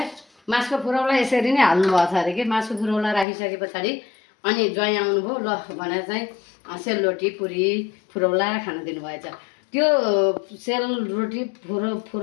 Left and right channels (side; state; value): right; drops out; at 3.2 s